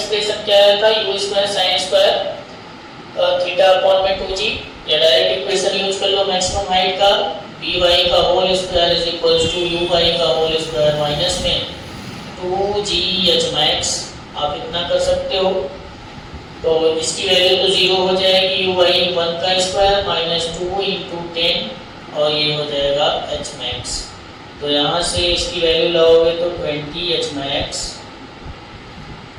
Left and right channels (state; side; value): identical; both; correlation 1.00